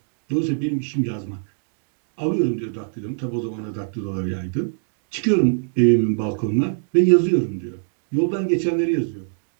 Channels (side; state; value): left; silent; digital silence